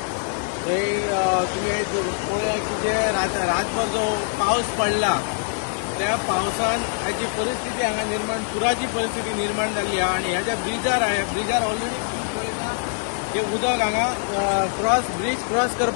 तुवें की जे रातभर जो पावस पडला त्या पावसान हाची परिस्थिती हांगा निर्माण पुराची परिस्थिती निर्माण जाल्ली आहा आनी ह्या ज्या ब्रिजार ऑलरेडी ब्रीज पळयता ते उदक हांगा ब्रीज क्रॉस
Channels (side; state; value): right; silent; 55 dB below the other